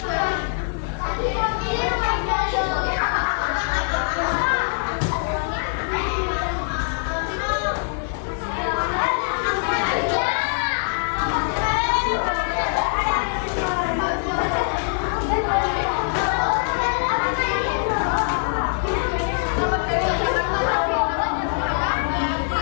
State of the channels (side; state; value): right; silent; digital silence